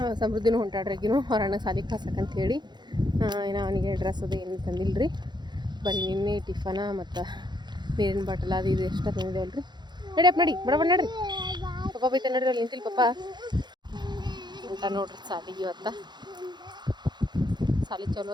ಸಮೃದ್ಧಿನೂ ಹೊಂಟಾಡ್ರಿಗಿನೂ ಹೊರಣ್ಣ ಸಾಲಿಗೆ ಕಳ್ಸಕ್ಕಂತ ಹೇಳಿ. ಏನೋ ಅವನಿಗೆ ಡ್ರೆಸ್ ಅದು ಏನು ತಂದಿಲ್ಲ ರೀ. ಬರೀ ನಿನ್ನೆ ಟಿಫನ ಮತ್ತು ನೀರಿನ ಬಾಟಲ್ ಅದು ಇದು ಎಷ್ಟ ತಂದಿದ್ದೇವಲ್ಲ ರೀ. ನಡಿಯಪ್ಪ ನಡಿ, ಬಡ ನಡ್ರಿ. ಪಪ್ಪ ಬೈತ ನಡ್ರಿ, ಅಲ್ಲಿ ನಿಂತಿಲ್ಲ ಪಪ್ಪ ಅಂತ ನೋಡ್ರಿ ಸಾಲಿಗೆ. ಇವತ್ತು ಸಾಲಿ ಚಲೋ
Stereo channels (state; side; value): late; left; 0.21 ms